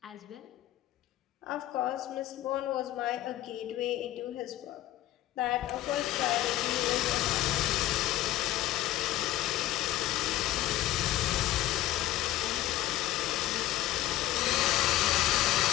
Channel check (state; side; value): quieter; right; 14.5 dB